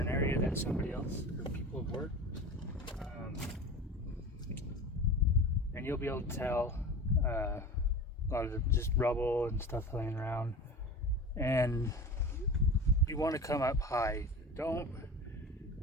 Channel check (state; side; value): normal; both; correlation 0.33